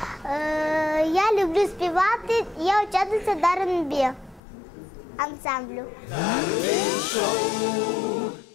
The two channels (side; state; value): right; drops out; at 4.4 s